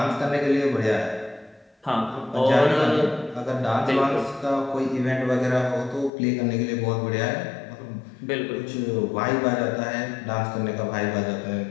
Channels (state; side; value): drops out; right; at 6.1 s